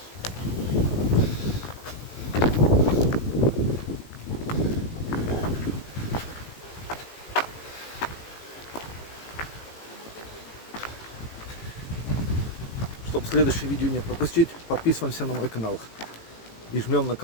Чтобы следующее видео не пропустить, подписываемся на мой канал и жмем на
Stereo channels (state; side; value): late; right; 18 ms